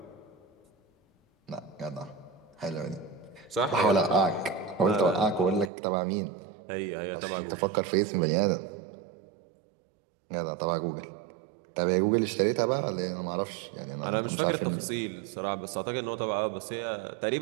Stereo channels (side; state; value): left; drops out; at 5.7 s